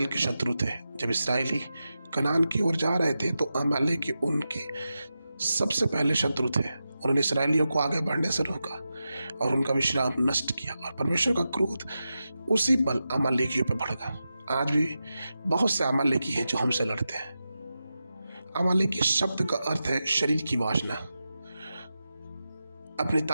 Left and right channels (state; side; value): inverted; both; correlation -0.91